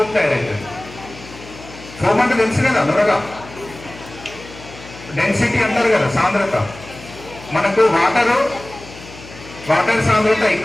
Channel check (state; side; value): noise; left; hum, 17 dB below the sound